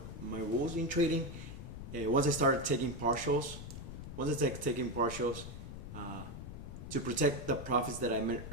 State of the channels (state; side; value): noise; left; rumble, 10 dB below the sound